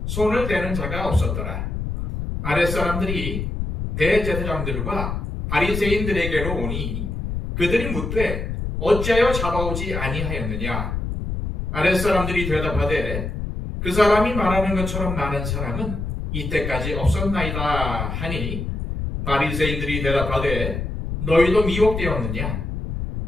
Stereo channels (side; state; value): left; noise; rumble, 4 dB below the sound